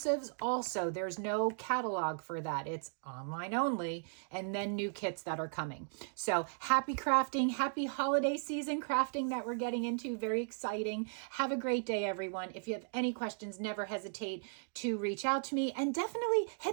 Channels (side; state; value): left; silent; digital silence